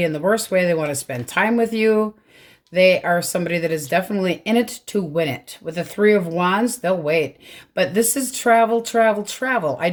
in the worst way. They want to spend time with you. They are somebody that is definitely in it to win it. With the 3 of Wands, they'll wait. But this is travel, travel, travel. I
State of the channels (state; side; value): identical; both; correlation 1.00